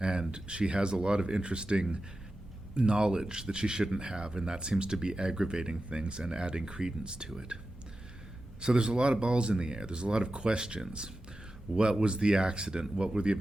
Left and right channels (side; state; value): both; normal; correlation 0.93